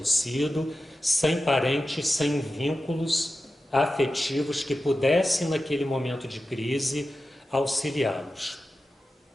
sem parentes, sem vínculos afetivos que pudessem, naquele momento de crise, auxiliá-los.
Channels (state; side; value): normal; both; correlation 0.93